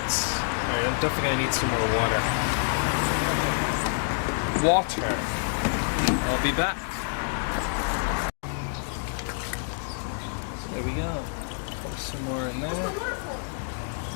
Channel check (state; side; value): silent; right; digital silence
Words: Alright, I'm definitely going to need some more water. I'll be back. So there we go. Put some more in there.